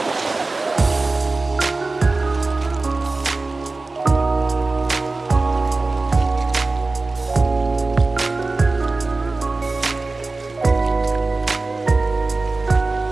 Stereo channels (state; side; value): quieter; left; 3.5 dB